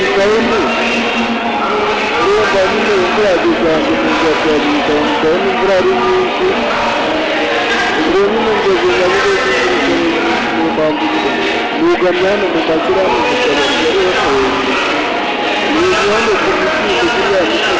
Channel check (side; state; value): both; identical; correlation 1.00